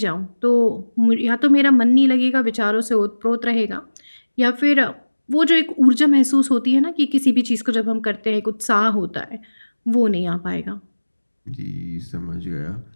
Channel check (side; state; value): both; inverted; correlation -1.00